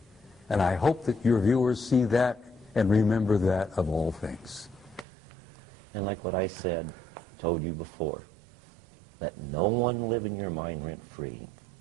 And I hope that your viewers see that and remember that of all things. And like what I said, told you before, let no one live in your mind rent-free.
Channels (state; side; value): drops out; left; at 5.1 s